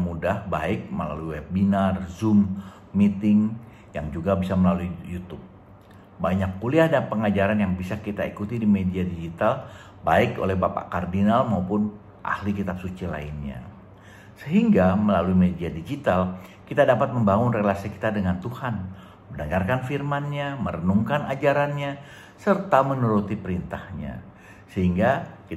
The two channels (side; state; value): both; identical; correlation 1.00